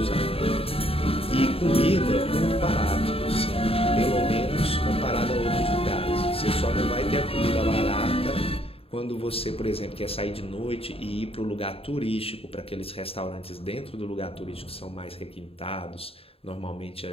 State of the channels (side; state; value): right; late; 0.28 ms